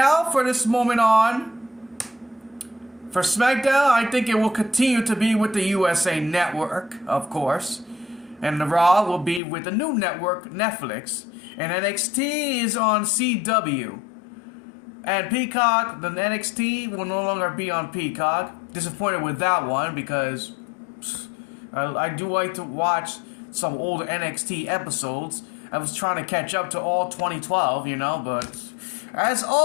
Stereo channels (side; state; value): right; drops out; at 9.4 s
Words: for this moment on, for SmackDown, I think it will continue to be with the USA Network, of course. And the Raw will be with the new network, Netflix. And NXT is on CW. And Peacock, the NXT will no longer be on Peacock. Disappointed with that one because I do like to watch some old NXT episodes. I was trying to catch up to all 2012, but as